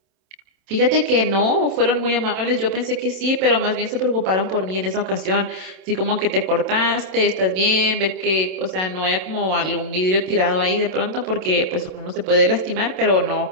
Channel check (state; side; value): late; left; 27 ms